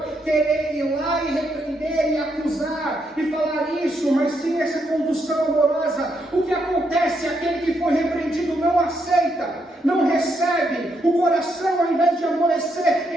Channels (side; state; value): both; normal; correlation 0.78